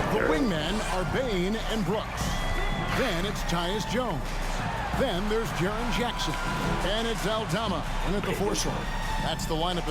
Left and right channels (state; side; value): identical; both; correlation 1.00